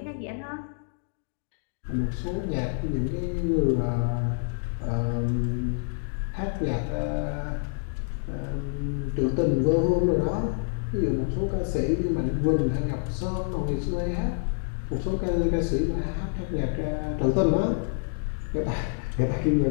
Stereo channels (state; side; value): silent; right; digital silence